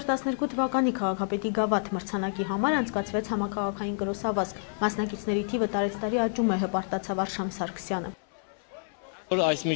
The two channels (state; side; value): silent; right; 59 dB below the other